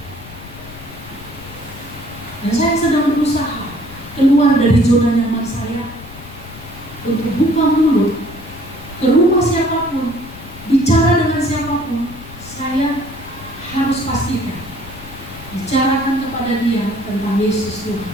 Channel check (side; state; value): left; noise; rumble, 16 dB below the sound